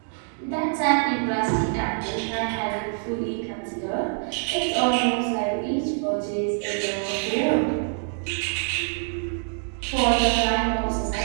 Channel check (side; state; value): left; silent; 58 dB below the other